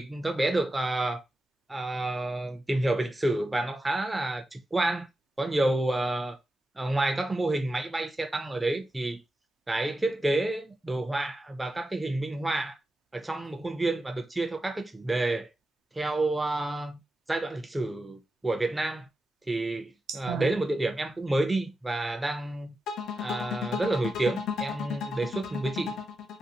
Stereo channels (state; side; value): normal; both; correlation 0.90